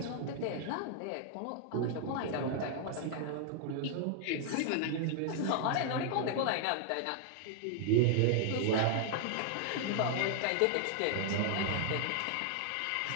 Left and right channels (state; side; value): different; both; correlation -0.01